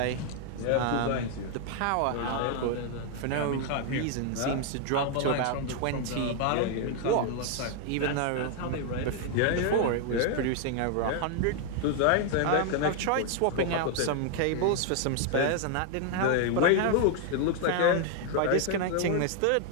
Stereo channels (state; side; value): different; both; correlation 0.00